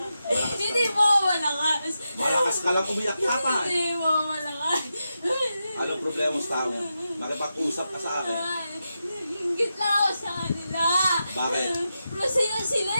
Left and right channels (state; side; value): inverted; both; correlation -0.89